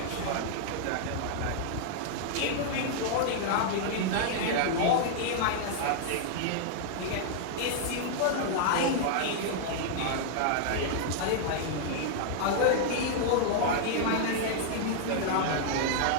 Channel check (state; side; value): different; both; correlation -0.01